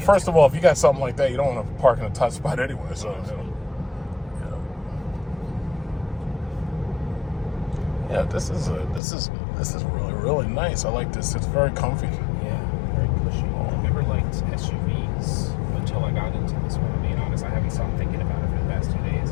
of all, if you got something like that, you don't want to park in a tight spot anyway. So. Yeah, this is really, really nice. I like this. It's very comfy. Yeah, very cushy. I never liked SUVs until I got into this one. To be honest, I haven't stopped thinking about it for the past 2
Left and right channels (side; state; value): right; drops out; at 9.0 s